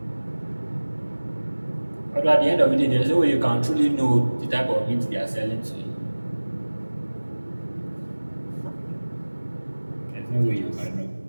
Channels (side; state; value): both; inverted; correlation -1.00